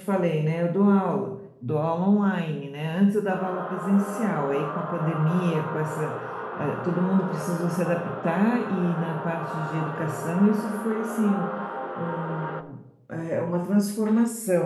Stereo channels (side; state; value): both; identical; correlation 1.00